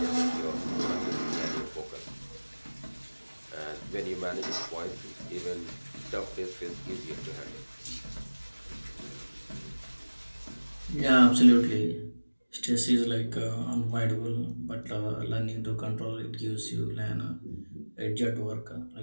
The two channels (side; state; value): both; inverted; correlation -1.00